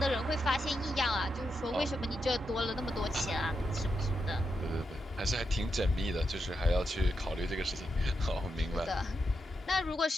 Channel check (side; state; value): both; normal; correlation 0.85